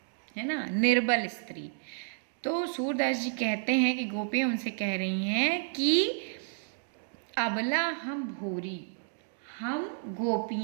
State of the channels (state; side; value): silent; left; digital silence